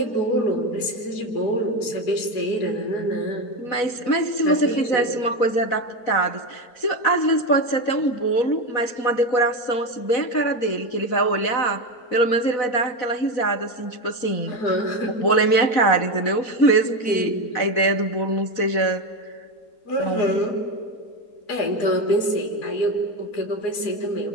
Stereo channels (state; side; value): late; right; 4.1 ms